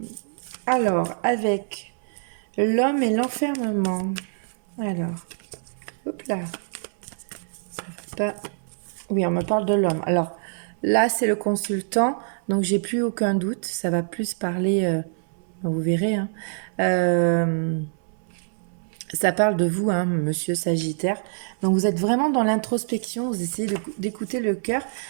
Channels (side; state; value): left; silent; 62 dB below the other